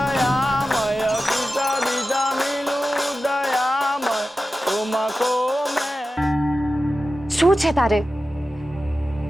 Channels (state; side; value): normal; both; correlation 0.93